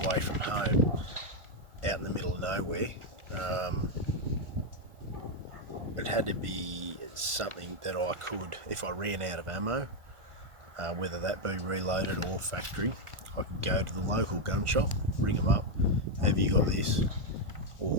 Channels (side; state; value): left; late; 1.5 ms